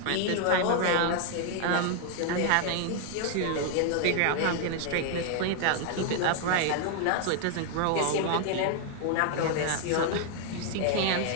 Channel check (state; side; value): different; both; correlation 0.00